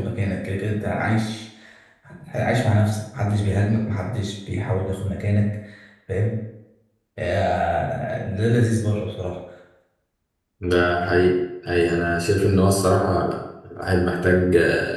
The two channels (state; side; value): identical; both; correlation 1.00